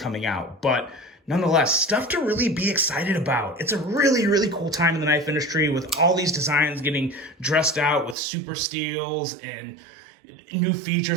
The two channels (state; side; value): drops out; left; at 8.2 s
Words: out. But nonetheless, stuff to really be excited about. It's a really, really cool time in the knife industry with all these designs getting dressed out with super steels and new